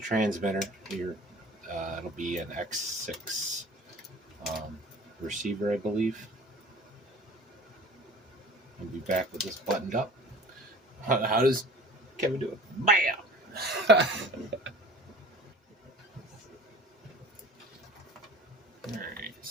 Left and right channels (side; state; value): both; normal; correlation 0.43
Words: here. It'll be an X6 receiver, I believe. I'll be back with this buttoned up. How does Kevin do it? Bam! Alright,